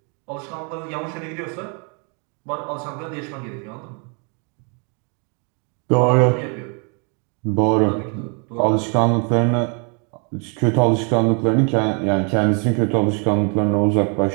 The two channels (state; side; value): quieter; left; 36.8 dB